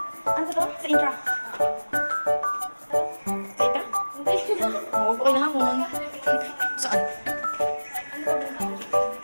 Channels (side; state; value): both; inverted; correlation -1.00